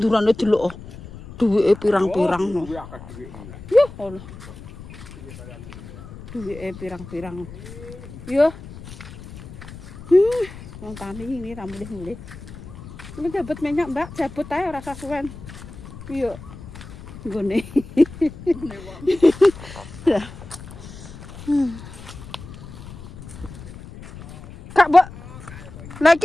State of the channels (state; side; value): noise; left; rumble, 15 dB below the sound